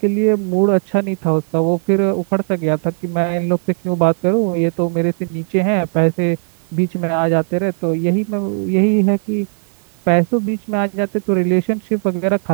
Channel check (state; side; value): silent; left; 68 dB below the other